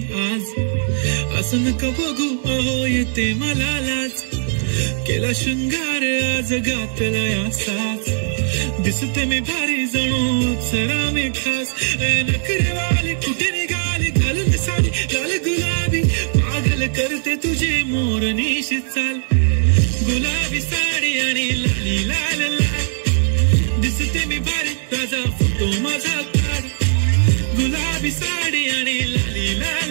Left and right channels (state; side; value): silent; left; digital silence